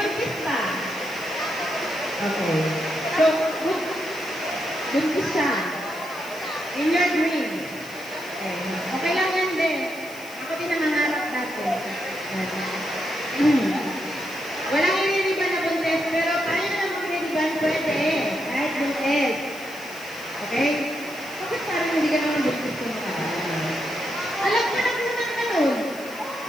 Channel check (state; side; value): noise; left; hiss, 19 dB below the sound